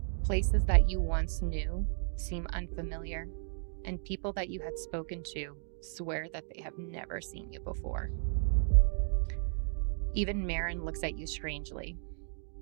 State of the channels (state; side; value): silent; left; digital silence